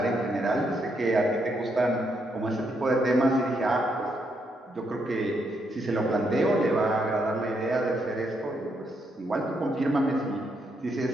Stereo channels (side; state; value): both; normal; correlation 0.77